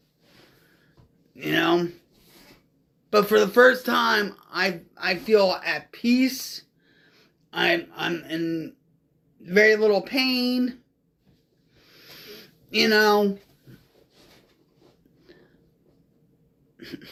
You know? But for the first time, I feel at peace. I'm in very little pain. You know?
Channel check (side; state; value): both; identical; correlation 1.00